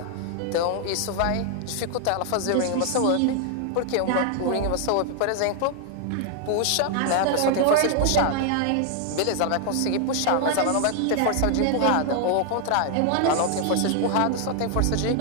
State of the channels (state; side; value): different; both; correlation 0.00